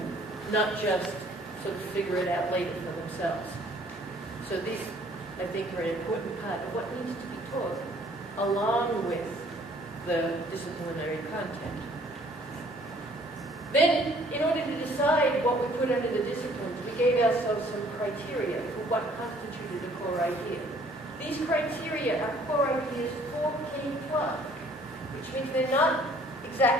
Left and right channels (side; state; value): both; normal; correlation 0.58